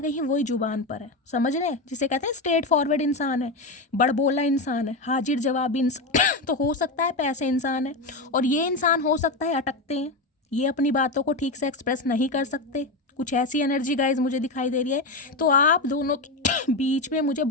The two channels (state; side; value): quieter; right; 3.0 dB